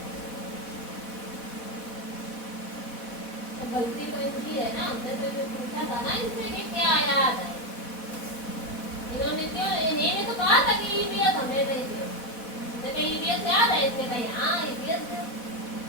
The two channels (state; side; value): late; right; 4.1 ms